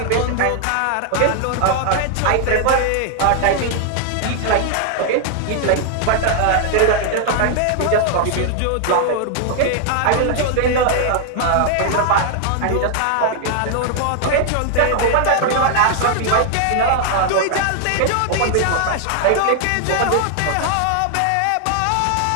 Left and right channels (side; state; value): both; different; correlation 0.00